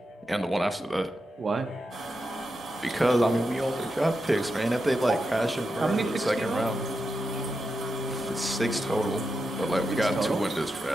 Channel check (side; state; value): both; normal; correlation 0.88